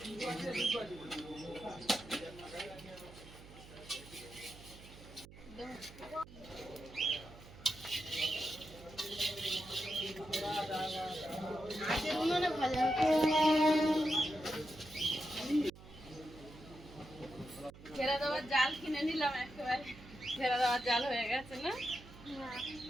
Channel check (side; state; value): right; noise; hum, 18 dB below the sound